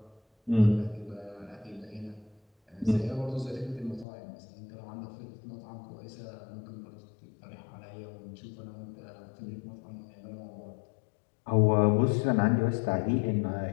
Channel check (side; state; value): right; drops out; at 4.0 s